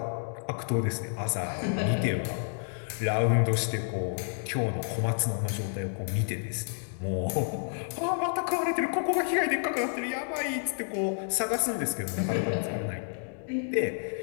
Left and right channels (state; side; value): silent; right; digital silence